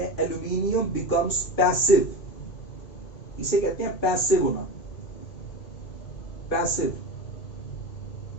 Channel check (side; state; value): right; late; 2.1 ms